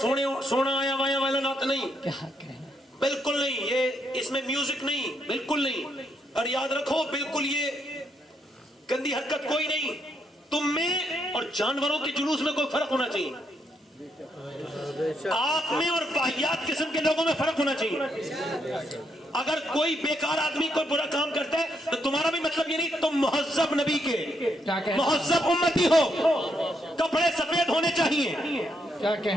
آیا وایا والا نعت نہیں، کیا کہنا، بالکل نہیں، یہ اس میں میوزک نہیں، بالکل نہیں۔ اور یاد رکھو بالکل یہ گندی حرکت کوئی نہیں، تم میں اور جانوروں کے جلوس میں کوئی فرق ہونا چاہیے، آپ میں اور واہیات قسم کے لوگوں میں فرق ہونا چاہیے۔ اگر کوئی بیکار آدمی کوئی برا کام کرتا ہے تو تمہارا بھی مطلب یہ نہیں، تم مہذب نبی کے مہذب امتی ہو، کپڑے سفید ہونے چاہیے، کیا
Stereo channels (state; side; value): normal; both; correlation 0.77